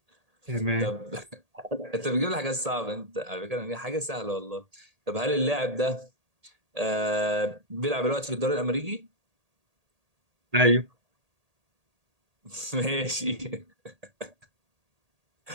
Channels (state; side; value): late; left; 1.8 ms